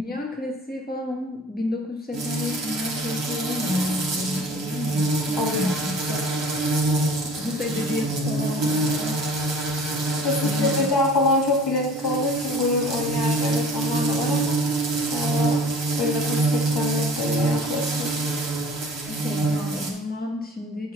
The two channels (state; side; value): normal; both; correlation 0.46